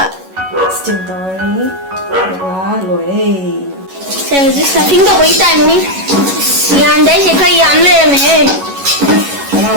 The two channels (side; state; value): left; late; 11 ms